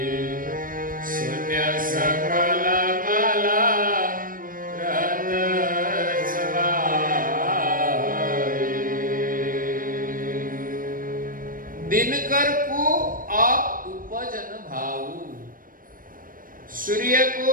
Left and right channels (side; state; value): left; late; 0.40 ms